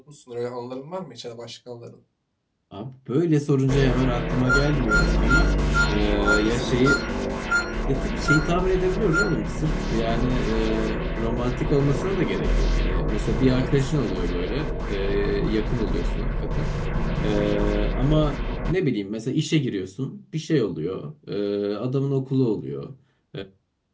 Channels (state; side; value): identical; both; correlation 1.00